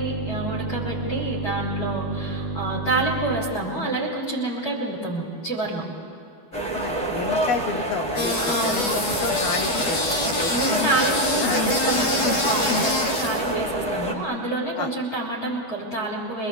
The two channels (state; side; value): late; right; 12 ms